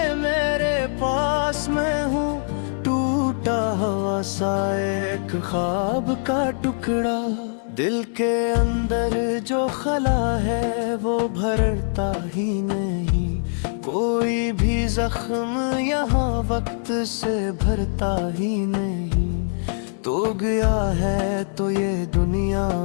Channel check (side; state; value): right; silent; digital silence